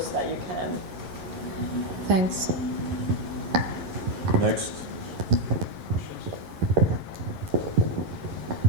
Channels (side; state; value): left; late; 11 ms